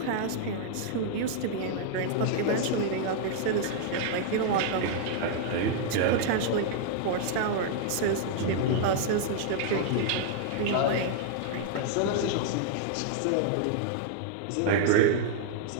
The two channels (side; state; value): both; different; correlation -0.01